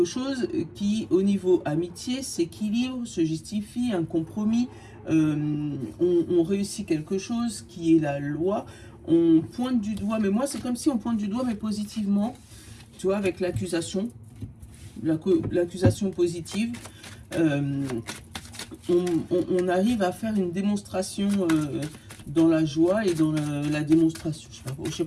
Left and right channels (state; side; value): identical; both; correlation 1.00